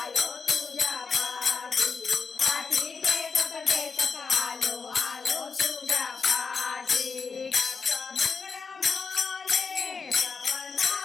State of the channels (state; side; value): quieter; right; 5.1 dB